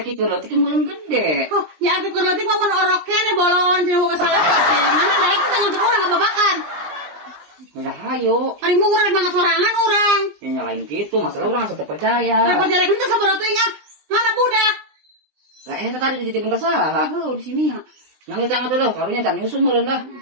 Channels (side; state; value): left; late; 20 ms